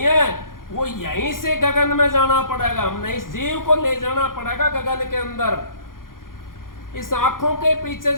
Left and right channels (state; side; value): late; right; 0.91 ms